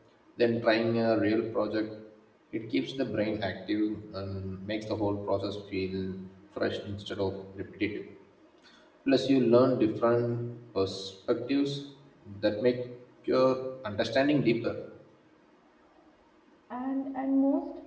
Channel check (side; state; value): both; identical; correlation 1.00